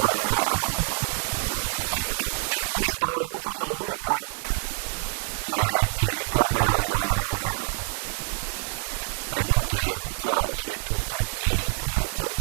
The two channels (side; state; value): left; silent; 61 dB below the other